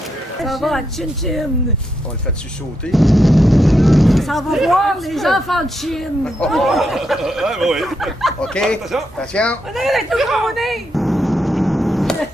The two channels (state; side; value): normal; both; correlation 0.82